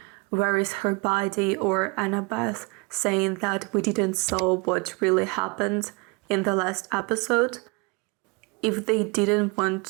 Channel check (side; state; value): left; quieter; 29.9 dB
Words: where is her body, or Annabeth saying that we didn't saw what really happened in the last episode, if they didn't want